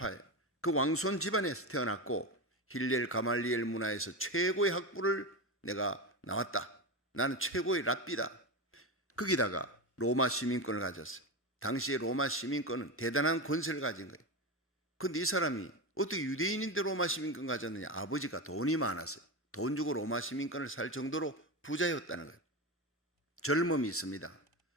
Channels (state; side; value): normal; both; correlation 0.18